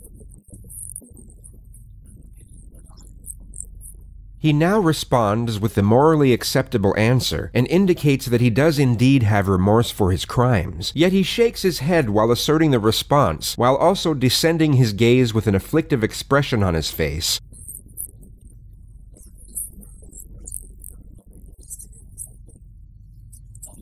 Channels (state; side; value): identical; both; correlation 1.00